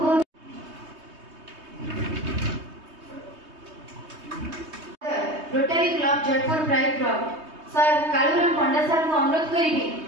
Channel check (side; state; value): left; late; 3.2 ms